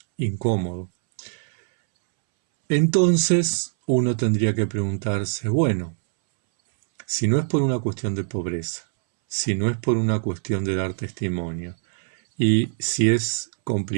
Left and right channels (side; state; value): left; silent; 63 dB below the other